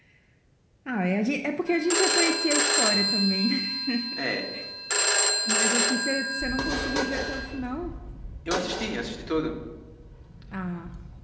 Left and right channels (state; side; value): identical; both; correlation 1.00